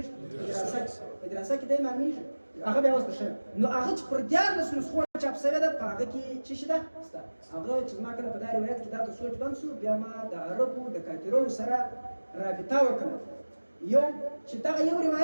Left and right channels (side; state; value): both; inverted; correlation -1.00